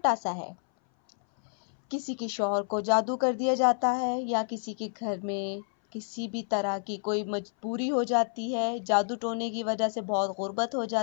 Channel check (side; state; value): right; silent; 58 dB below the other